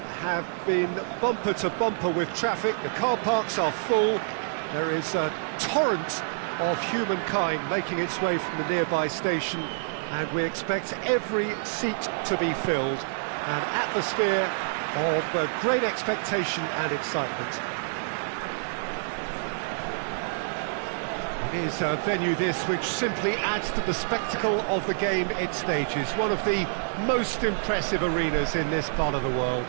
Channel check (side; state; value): left; silent; digital silence